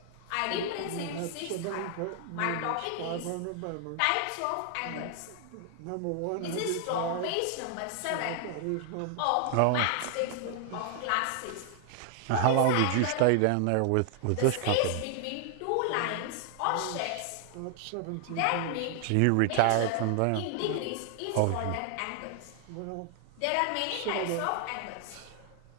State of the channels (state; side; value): different; both; correlation 0.00